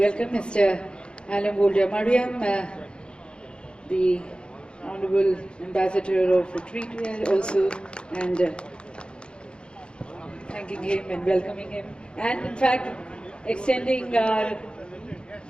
mister Alam Wulda Mariam, the Honorable Ambassador of Retreat also, and thanking him and welcoming him, and in fact extending our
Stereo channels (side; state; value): right; late; 0.054 ms